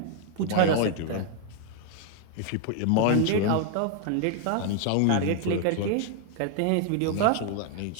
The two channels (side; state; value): both; different; correlation 0.00